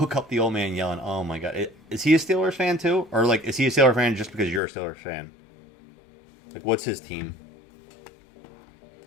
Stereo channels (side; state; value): right; drops out; at 4.6 s